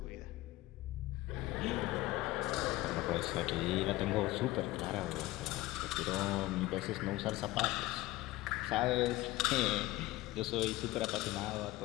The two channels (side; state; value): right; quieter; 18.0 dB